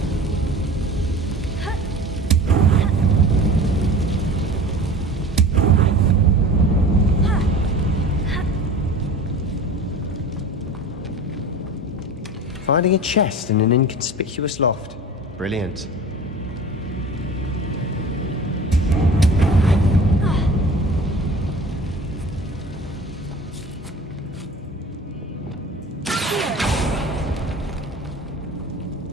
Finding a chest in an inconspicuous loft. Brilliant.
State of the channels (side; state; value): both; normal; correlation 0.39